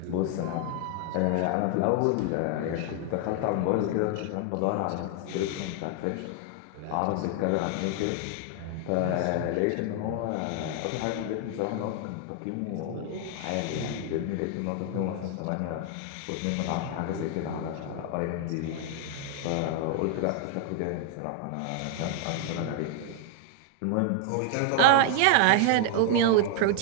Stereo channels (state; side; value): different; both; correlation 0.00